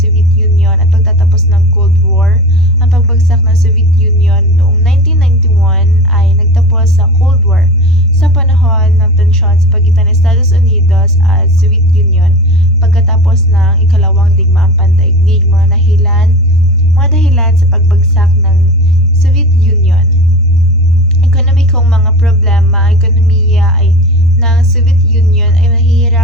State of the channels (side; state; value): both; normal; correlation 0.31